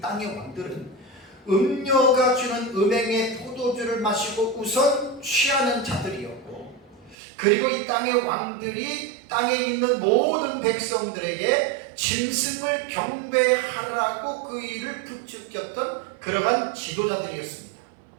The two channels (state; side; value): drops out; left; at 7.2 s